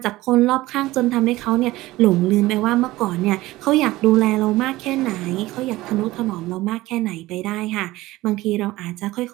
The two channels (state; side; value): quieter; left; 18.1 dB